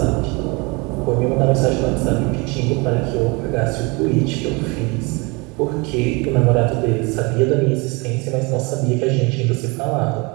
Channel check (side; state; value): left; quieter; 27.9 dB